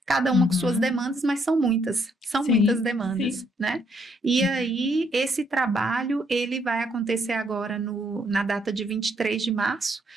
cada uma com suas demandas, mas são muitas demandas, né? E aí, esse trabalho, ele vai acontecer agora na data de 23 de março,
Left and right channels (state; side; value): normal; both; correlation 0.72